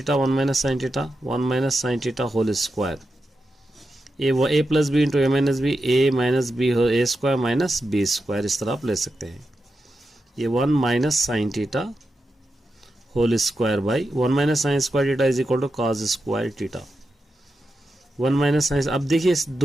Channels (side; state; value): both; normal; correlation 0.89